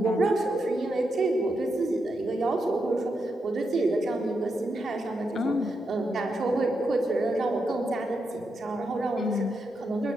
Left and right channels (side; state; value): both; normal; correlation 0.84